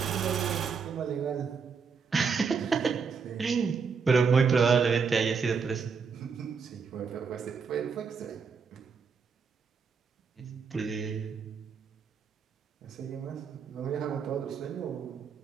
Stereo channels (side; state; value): left; quieter; 5.7 dB